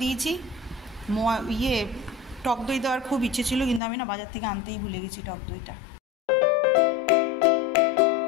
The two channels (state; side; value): drops out; right; at 3.8 s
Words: দিয়েছি। টক দই দেওয়ার খুব ইচ্ছে ছিল, কিন্তু আমি না বাজার থেকে আনতেই ভুলে গেছি টক দইটা।